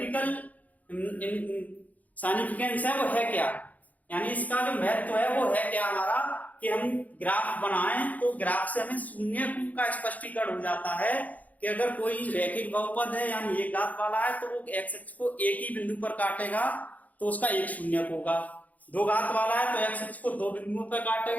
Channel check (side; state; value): right; late; 0.077 ms